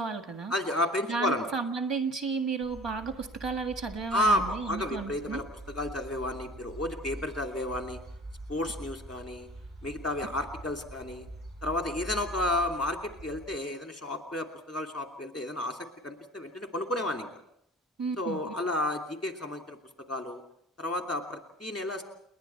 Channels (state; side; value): normal; both; correlation 0.43